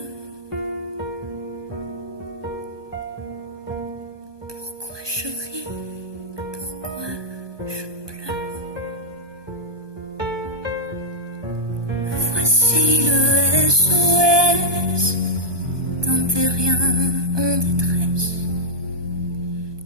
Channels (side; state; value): left; late; 1.2 ms